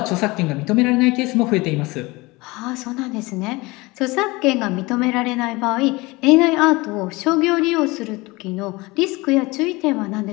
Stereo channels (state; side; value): quieter; right; 22.9 dB